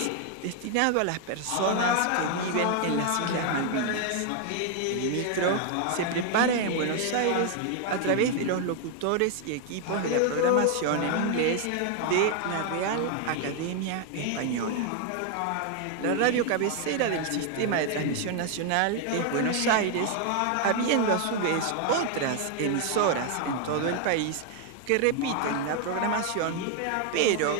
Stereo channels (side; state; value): both; different; correlation 0.00